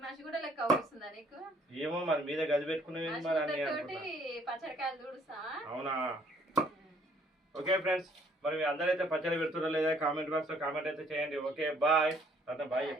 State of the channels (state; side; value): normal; both; correlation 0.63